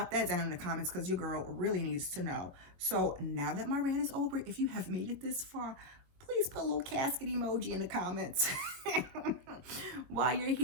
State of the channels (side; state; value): left; late; 22 ms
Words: that down in the comments, because your girl really needs to know. So now that my rant is over, if you have made it this far, please put a little casket emoji in the comments. While you're